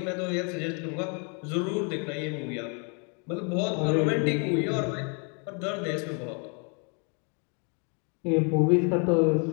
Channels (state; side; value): quieter; right; 37.1 dB